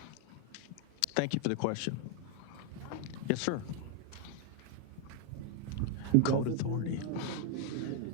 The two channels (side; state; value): both; different; correlation 0.01